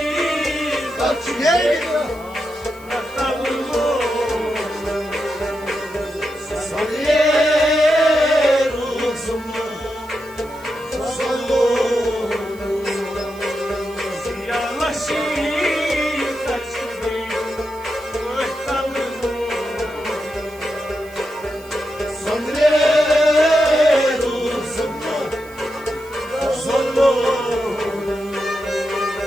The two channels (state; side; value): noise; right; hiss, 23 dB below the sound